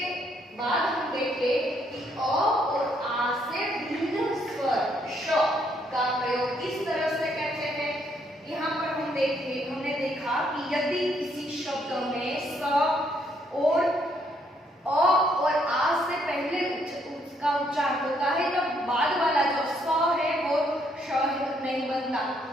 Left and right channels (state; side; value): normal; both; correlation 0.71